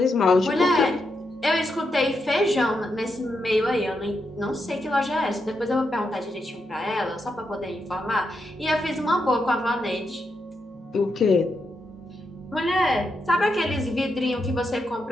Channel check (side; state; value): both; normal; correlation 0.84